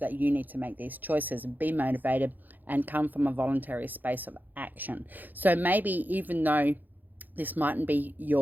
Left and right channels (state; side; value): late; left; 0.085 ms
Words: you need to make these choices and be motivated and come from a voluntary space of action. So maybe even though This mightn't be